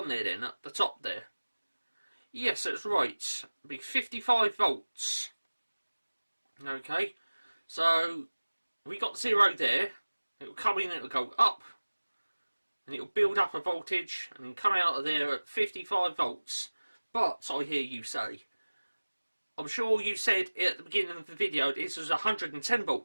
there then, at the top there. Yes, that's right. It'll be 55 volts. Okay, so we got 0 there. It'll come in, it'll go up, and it'll build up a voltage, and then come out of there at 55 volts. But I hear you say, I'm sure you said at the beginning of the video this was a 110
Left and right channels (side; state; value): both; inverted; correlation -1.00